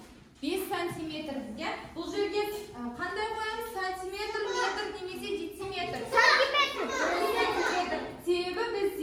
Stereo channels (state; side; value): identical; both; correlation 1.00